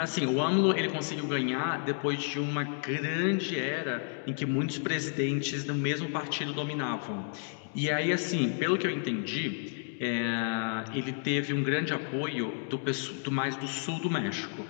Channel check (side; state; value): right; silent; 57 dB below the other